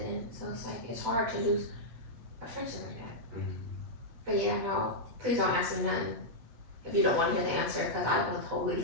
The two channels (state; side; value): late; left; 8.0 ms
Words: in, so it's like it's hard to lose a friendship like that. But yeah, no, please don't ask me nothing if you don't want to hear the answer, because I will totally